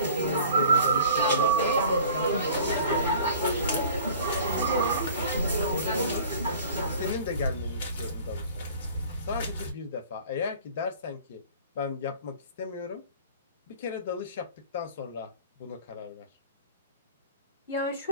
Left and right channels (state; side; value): inverted; both; correlation -0.46